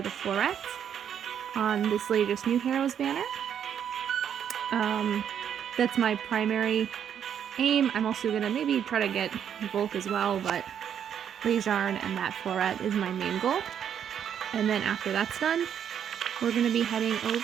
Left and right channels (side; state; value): left; quieter; 8.8 dB